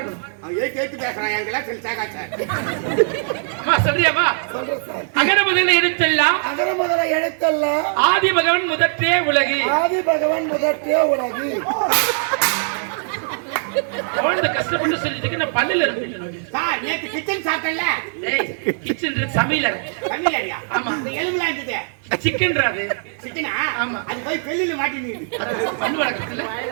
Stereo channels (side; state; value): left; silent; digital silence